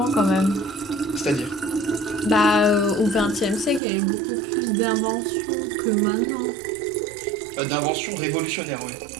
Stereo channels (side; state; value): left; drops out; at 3.8 s